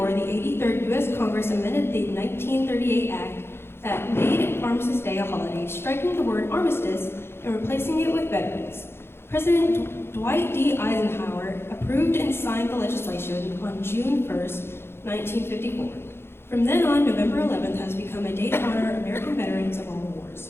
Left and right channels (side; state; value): right; late; 0.11 ms